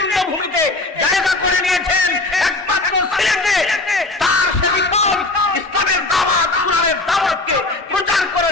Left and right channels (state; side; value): quieter; right; 3.0 dB